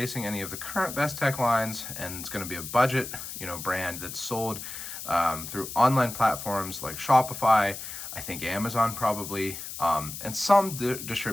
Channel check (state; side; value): noise; left; hiss, 9 dB below the sound